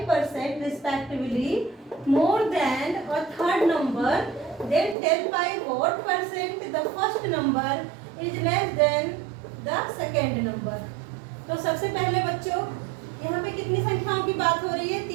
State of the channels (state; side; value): drops out; left; at 5.0 s